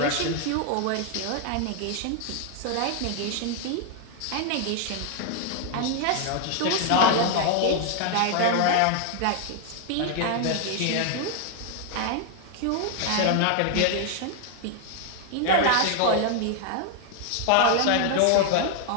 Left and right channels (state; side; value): different; both; correlation 0.00